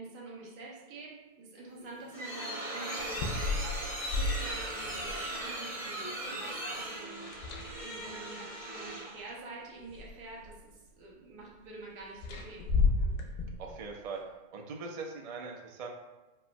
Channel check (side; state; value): right; late; 2.1 ms